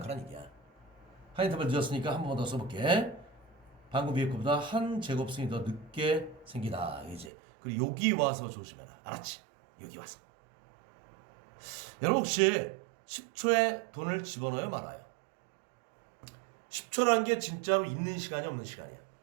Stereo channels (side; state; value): left; drops out; at 7.3 s